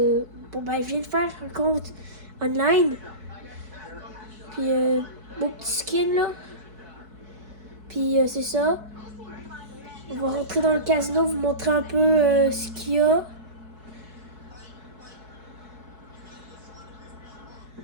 viens de faire un compte online, puis mon petit skin là, puis c'est ça, on va rentrer dans le casino, vous montrer un peu ce qu'il y a.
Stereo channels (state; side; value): late; left; 4.7 ms